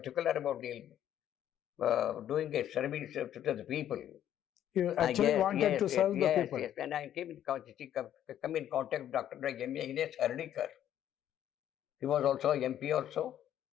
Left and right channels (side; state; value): right; quieter; 11.0 dB